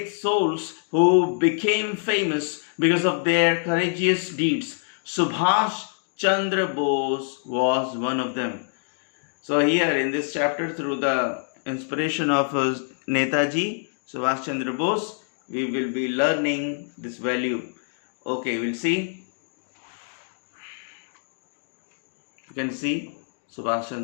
souls who became famous because of their courageous deeds. Subhash Chandra Bose was one of them. So here in this chapter, through the inspiration of Netaji Subhash Chandra Bose, we will be learning this value. Okay, we'll see. You can see Subhash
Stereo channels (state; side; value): silent; right; digital silence